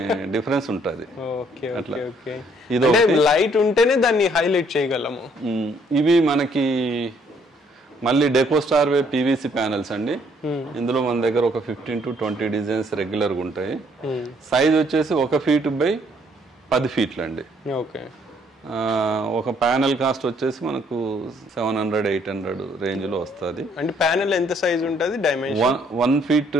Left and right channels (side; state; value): both; normal; correlation 0.66